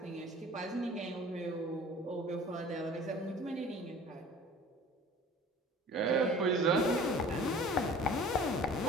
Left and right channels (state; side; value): normal; both; correlation 0.45